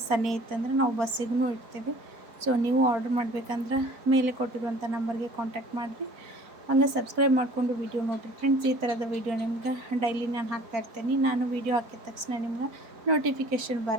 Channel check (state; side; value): late; left; 4.4 ms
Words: ಸನೇ ಇತ್ತಂದ್ರೆ ನಾವು ಬಸ್ಸಿಗೂ ಇಡ್ತೀವಿ. ಸೊ ನೀವು ಆರ್ಡರ್ ಮಾಡಬೇಕಂದ್ರೆ ಮೇಲೆ ಕೊಟ್ಟಿರುವಂಥ ನಂಬರ್ಗೆ ಕಾಂಟ್ಯಾಕ್ಟ್ ಮಾಡಿರಿ. ಹಂಗೆ ಸಬ್ಸ್ಕ್ರೈಬ್ ಮಾಡಿಕೊಂಡು ವೀಡಿಯೋ ನೋಡಿರಿ ಫ್ರೆಂಡ್ಸ್. ಈ ಥರದ ವೀಡಿಯೋ ನಿಮ್ಗೆ ಡೈಲಿ ನಾನು ಹಾಕ್ತಾ ಇರ್ತೀನಿ. ನಾನು ವೀಡಿಯೋ ಹಾಕಿದ ತಕ್ಷಣ ನಿಮ್ಗೆ ನೋಟಿಫಿಕೇಷನ್